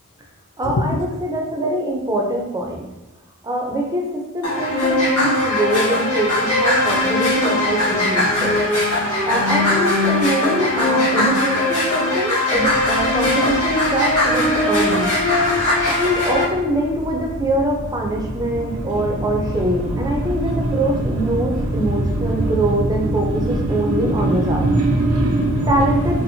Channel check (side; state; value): both; normal; correlation 0.30